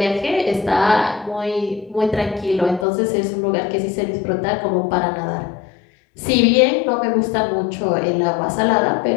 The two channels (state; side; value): drops out; right; at 2.9 s